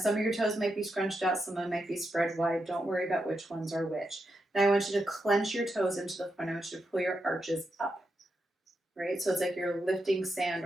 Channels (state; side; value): normal; both; correlation 0.85